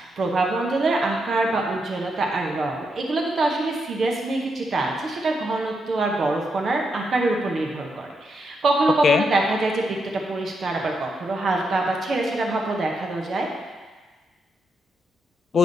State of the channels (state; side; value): normal; both; correlation 0.81